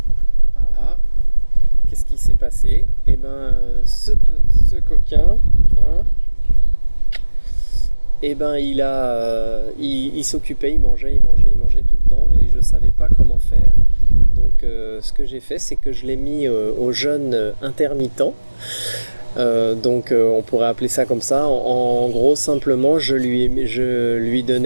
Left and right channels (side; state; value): both; inverted; correlation -1.00